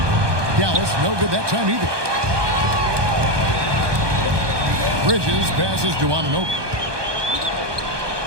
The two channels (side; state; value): left; late; 1.2 ms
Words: Dallas, no good that time either. Bridges passes to Anunoby.